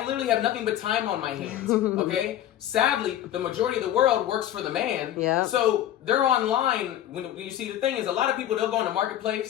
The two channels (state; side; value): quieter; right; 11.9 dB